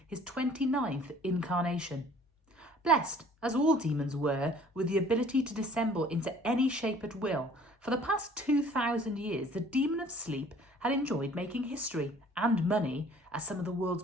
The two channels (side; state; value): both; normal; correlation 0.53